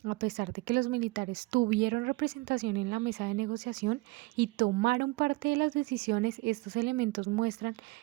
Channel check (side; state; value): left; quieter; 23.2 dB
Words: a pesar de que los militares tuvieron representación en la mesa de negociación y tomaron parte de las decisiones, estos elementos muestran